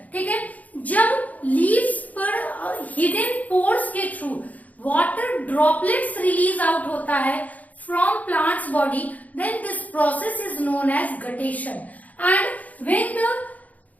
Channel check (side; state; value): right; late; 0.075 ms